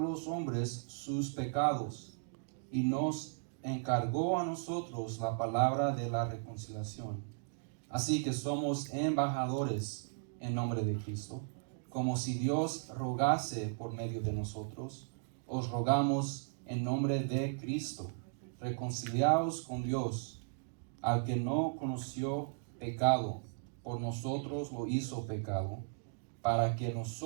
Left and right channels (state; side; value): silent; left; digital silence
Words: hombres sus pecados, y nos encargó a nosotros la palabra de la reconciliación. Así que somos embajadores en nombre de Cristo, como si Dios rogase por medio de nosotros. Os rogamos en nombre de Cristo, reconciliaos con Dios. Al que no conoció pecado, por nosotros lo hizo pecado, para que